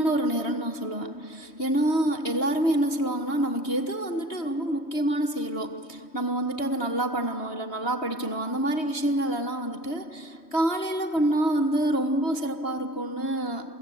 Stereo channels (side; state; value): right; late; 3.1 ms